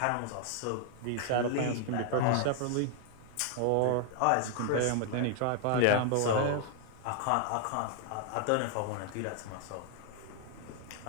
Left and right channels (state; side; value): different; both; correlation 0.00